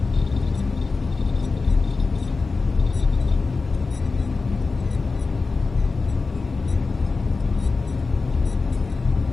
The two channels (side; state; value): right; quieter; 4.1 dB